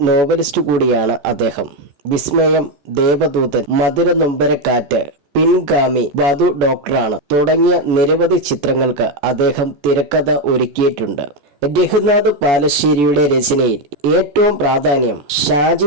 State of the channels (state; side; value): late; left; 14 ms